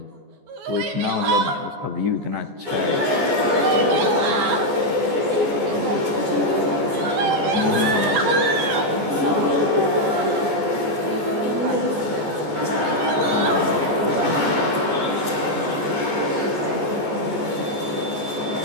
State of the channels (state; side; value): late; left; 14 ms